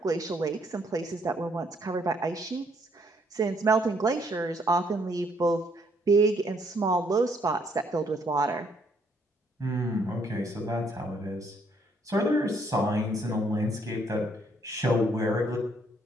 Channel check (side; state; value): both; normal; correlation 0.68